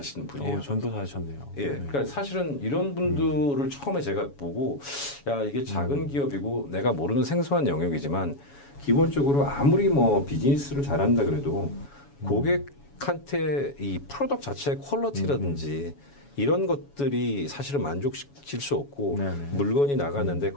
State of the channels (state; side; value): late; right; 7.1 ms